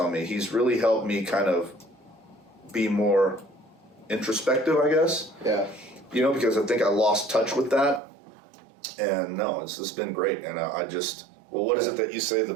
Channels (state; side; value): drops out; left; at 8.0 s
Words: me. He's really helped me kind of be more introspective, I guess. Yeah. Because I think I lost touch with that. And no, it's been great. And I just, what is it that you say the